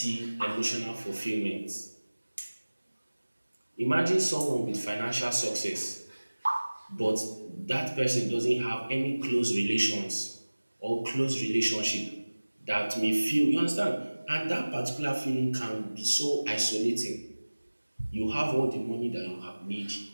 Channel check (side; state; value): both; inverted; correlation -1.00